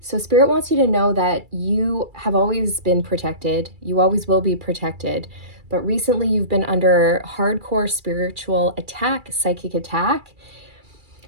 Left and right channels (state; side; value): late; left; 2.3 ms